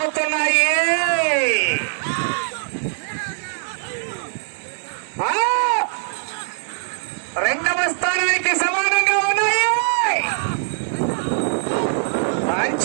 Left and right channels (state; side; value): silent; left; digital silence